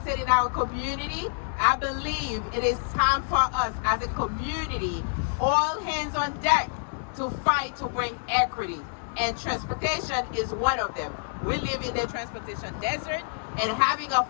in our community, I believe it is time for us as a community, all hands on deck, to fight to bring equity. And transportation is one of them. We live in the transportation desert, and having a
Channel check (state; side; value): silent; right; digital silence